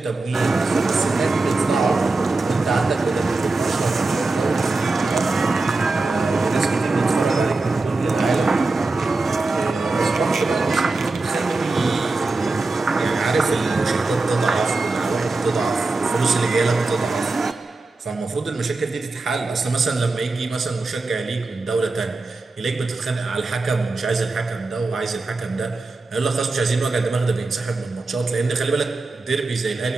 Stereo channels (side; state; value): left; quieter; 3.5 dB